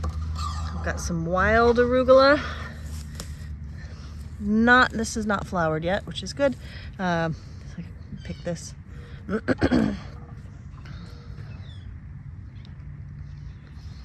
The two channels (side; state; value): both; identical; correlation 1.00